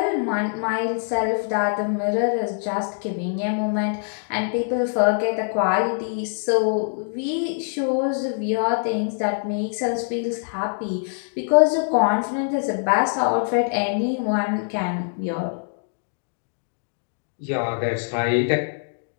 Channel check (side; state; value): right; silent; digital silence